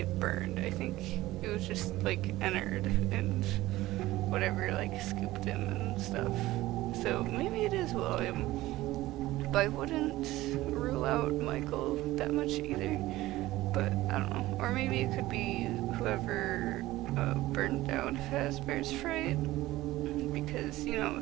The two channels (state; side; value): quieter; left; 17.1 dB